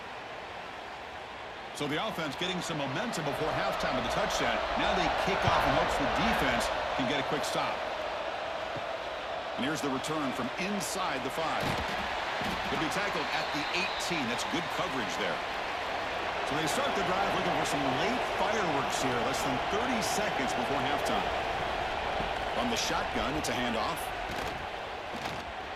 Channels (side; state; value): both; identical; correlation 1.00